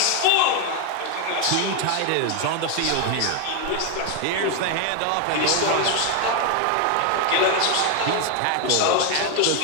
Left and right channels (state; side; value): different; both; correlation 0.01